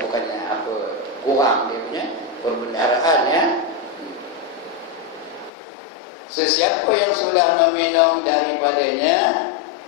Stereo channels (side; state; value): right; drops out; at 5.5 s